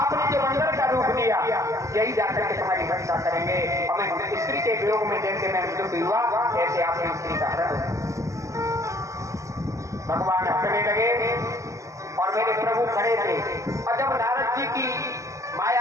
जो बंदर का रूप लिया, यही जाकर के तुम्हारी रक्षा करेंगे। हमें स्त्री के वियोग में जैसे मैं मृत्यु हुआ, ऐसे आपने स्त्री का हरण। भगवान हंसने लगे और मेरे प्रभु खड़े थे। और जब नारद जी की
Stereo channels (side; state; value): left; late; 0.15 ms